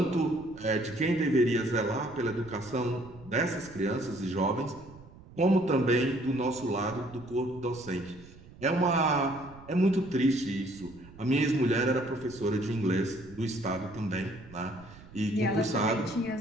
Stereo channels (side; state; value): right; noise; rumble, 20 dB below the sound